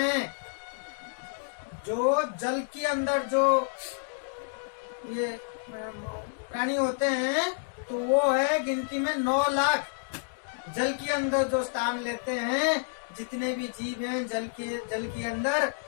जो जल के अंदर जो ये प्राणी होते हैं तो वो है गिनती में 9 लाख। जल के अंदर जो स्थान लेते हैं, जितने भी जीव हैं जल के अंदर,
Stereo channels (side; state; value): right; silent; 58 dB below the other